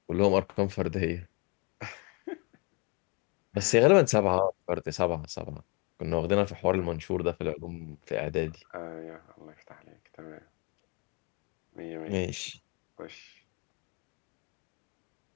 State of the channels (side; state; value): right; quieter; 31.2 dB